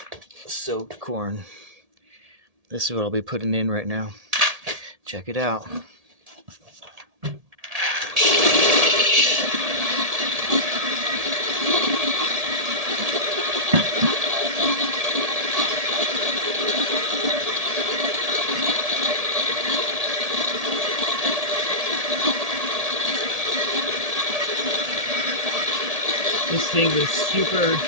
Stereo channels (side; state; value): left; late; 1.8 ms